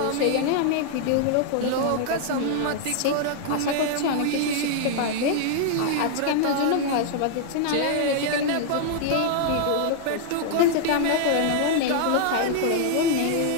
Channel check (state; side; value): different; both; correlation -0.01